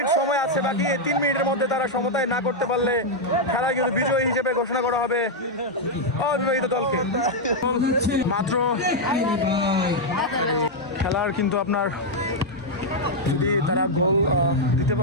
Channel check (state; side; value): normal; both; correlation -0.02